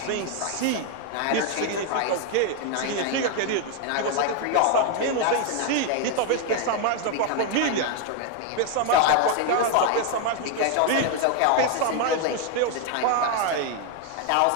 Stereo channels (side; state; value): both; different; correlation 0.01